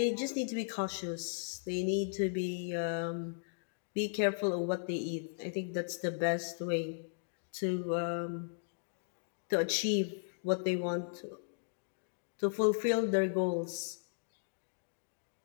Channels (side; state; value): right; silent; digital silence